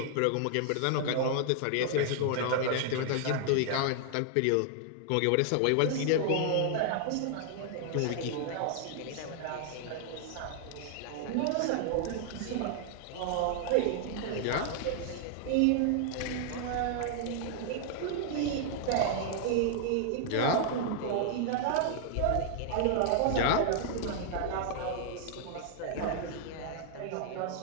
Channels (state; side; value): different; both; correlation 0.00